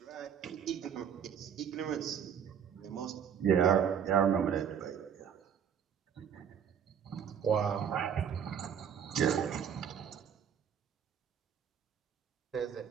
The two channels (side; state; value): left; quieter; 8.1 dB